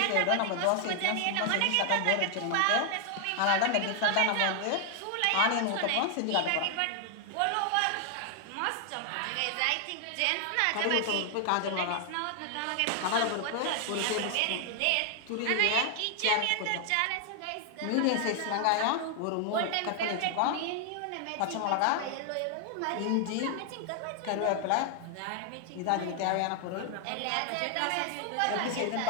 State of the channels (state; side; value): different; both; correlation 0.00